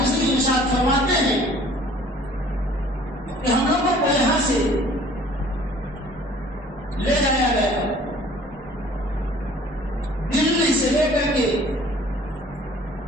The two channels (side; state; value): both; normal; correlation 0.52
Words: ارشاد فرماتے ہیں کہ ہم لوگوں کو یہاں سے لے جایا گیا، دلی سے لے کر کے